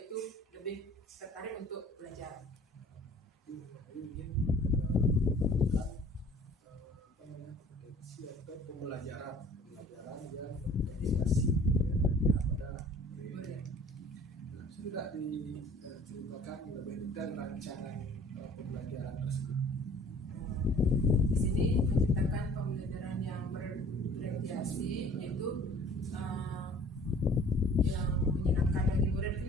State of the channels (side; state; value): both; normal; correlation 0.51